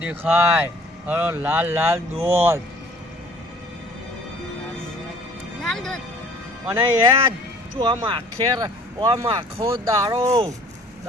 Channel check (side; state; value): both; normal; correlation 0.53